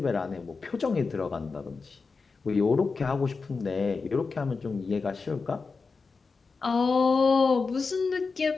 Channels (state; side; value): quieter; right; 4.5 dB